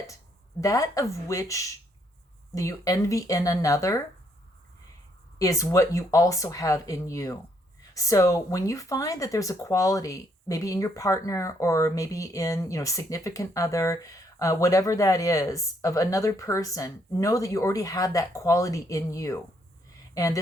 of which you envy in another is what you also have in you. So when you find that there's a quality, maybe in your partner or maybe in, significant other, whatever that is, of another person, know that you already have that quality in you. And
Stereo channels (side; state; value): both; normal; correlation 0.71